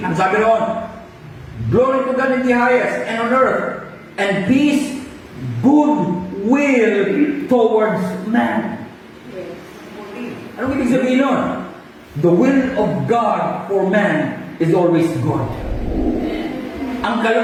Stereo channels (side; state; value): both; identical; correlation 1.00